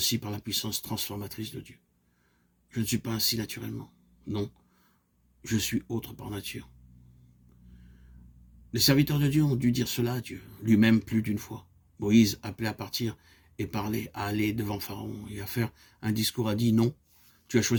par la puissance transformatrice de Dieu. Je ne suis pas ainsi naturellement. Non, je suis autre par nature. Les serviteurs de Dieu ont dû dire cela à Dieu, lui-même plus d'une fois. Moïse, appelé à partir et parler, à aller devant Pharaon et à faire un discours, a dit « Non, tu as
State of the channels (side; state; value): both; identical; correlation 1.00